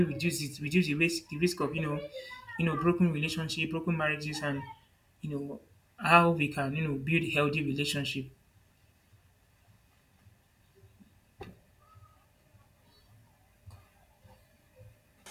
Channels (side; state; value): both; identical; correlation 1.00